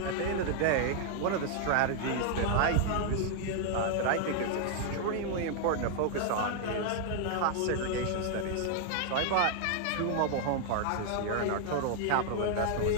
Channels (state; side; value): different; both; correlation 0.00